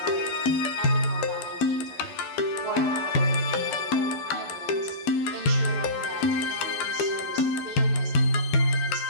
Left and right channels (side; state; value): right; late; 12 ms